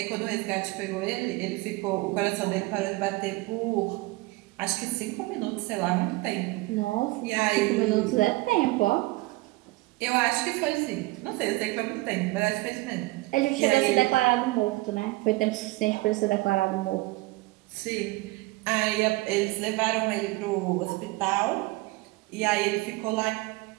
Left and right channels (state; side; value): quieter; left; 21.3 dB